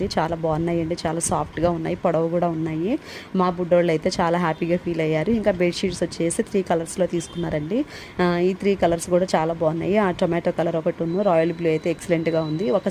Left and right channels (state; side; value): identical; both; correlation 1.00